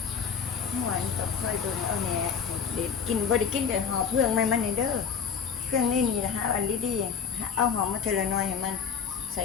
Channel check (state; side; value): quieter; right; 6.8 dB